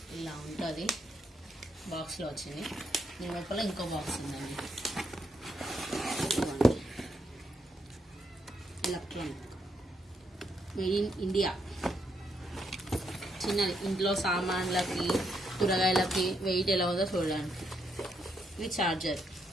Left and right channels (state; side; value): normal; both; correlation 0.77